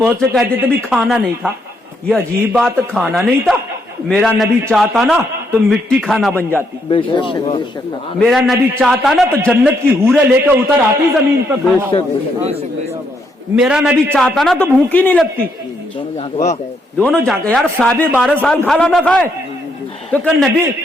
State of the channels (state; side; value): normal; both; correlation 0.75